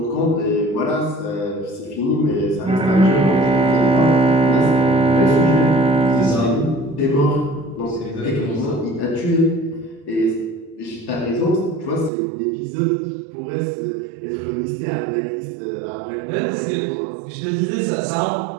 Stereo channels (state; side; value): drops out; left; at 12.1 s